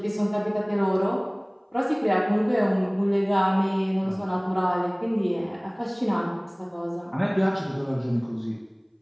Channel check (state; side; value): identical; both; correlation 1.00